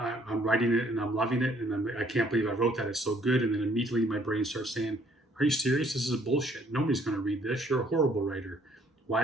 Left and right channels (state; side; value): normal; both; correlation 0.62